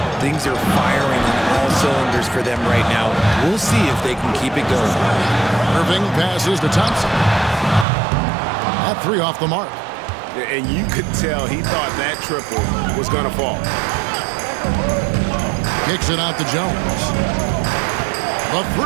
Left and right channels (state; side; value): drops out; left; at 7.9 s